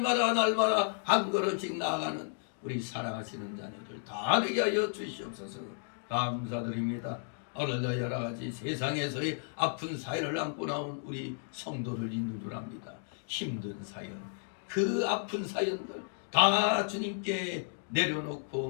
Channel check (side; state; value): right; silent; digital silence